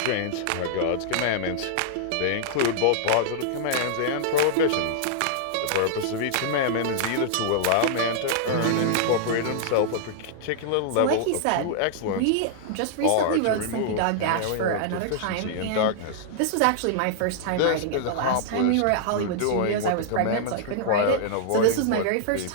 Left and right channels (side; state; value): both; different; correlation -0.01